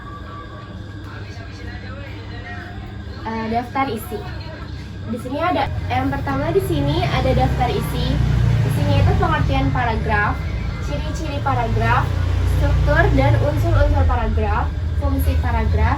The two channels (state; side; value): identical; both; correlation 1.00